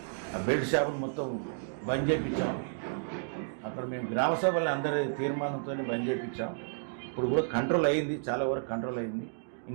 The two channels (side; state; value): left; silent; digital silence